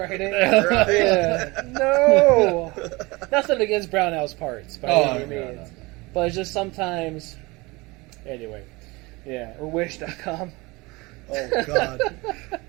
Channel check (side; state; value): left; quieter; 23.8 dB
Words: Right. Yeah. No. Nothing against Brownell's parts by any no, means. no. But it's just sometimes. Anyway. Yeah. Or wish.com. Oh God.